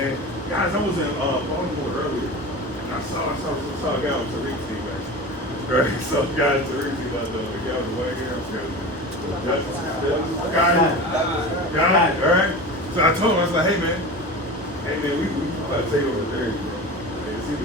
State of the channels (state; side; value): normal; both; correlation 0.31